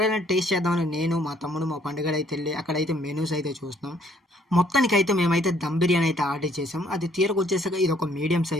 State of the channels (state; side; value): normal; both; correlation 0.64